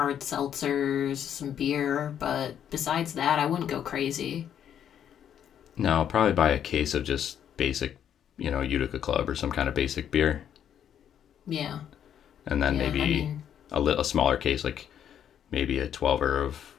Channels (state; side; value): quieter; right; 9.4 dB